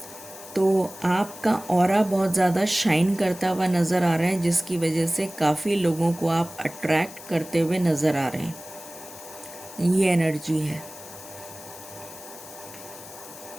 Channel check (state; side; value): noise; left; hiss, 16 dB below the sound